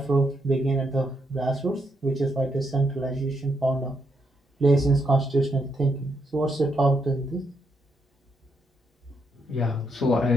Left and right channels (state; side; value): normal; both; correlation 0.78